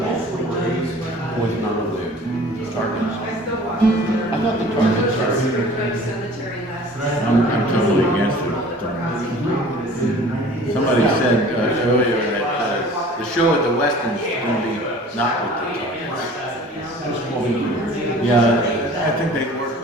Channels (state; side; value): normal; both; correlation 0.46